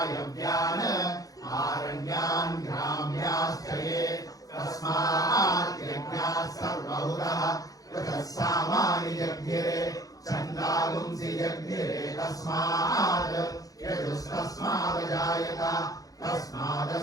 आरण्यान् ग्राम्याश्च ये तस्मात् यज्ञाः सर्वहुतः पृथः सामानि जग्निरे छन्दागुंसि जग्निरे तस्मात् यजुस्तस्मादजायत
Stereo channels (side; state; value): right; late; 0.17 ms